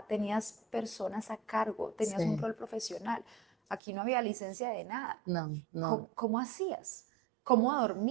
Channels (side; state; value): left; drops out; at 3.8 s